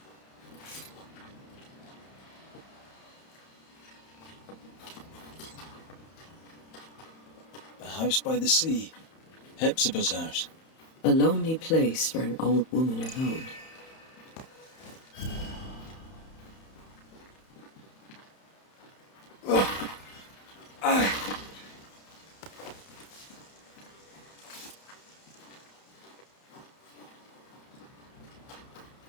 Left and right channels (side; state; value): right; late; 31 ms